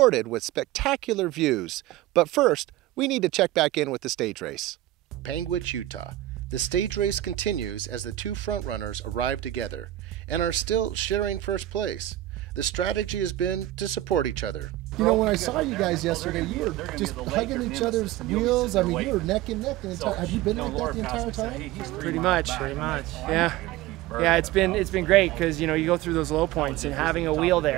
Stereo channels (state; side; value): quieter; left; 14.8 dB